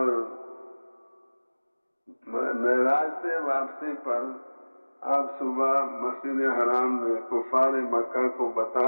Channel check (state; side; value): inverted; both; correlation -1.00